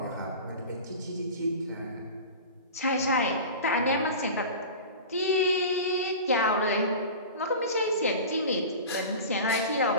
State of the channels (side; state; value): both; inverted; correlation -0.33